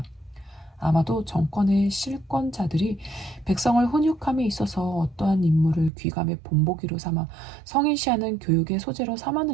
아마도 정권의 실권자들이 백성을 훈육함에 있어서 어떠한 임무를 귀감의 본보기로 삼아 성인시하는 교육의 소재로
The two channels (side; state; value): left; drops out; at 5.9 s